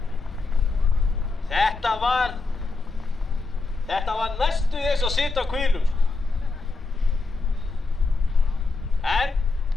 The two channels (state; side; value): quieter; right; 3.8 dB